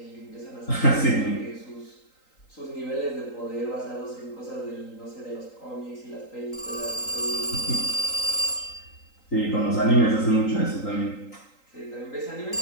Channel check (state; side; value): late; right; 3.8 ms